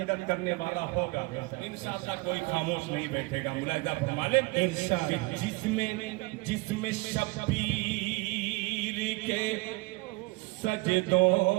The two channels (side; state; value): left; quieter; 24.1 dB